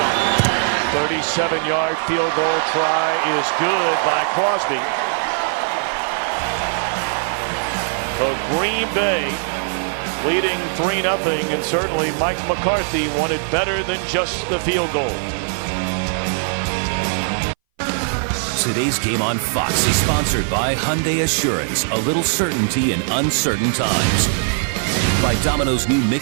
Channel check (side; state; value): left; silent; 61 dB below the other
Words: 37-yard field goal try is good by Crosby. So Green Bay leading 3-0, and certainly Mike McCarthy wanted better than just the field goal. Today's game on Fox is sponsored by Hyundai Assurance, a little certainty in uncertain times. By Domino's new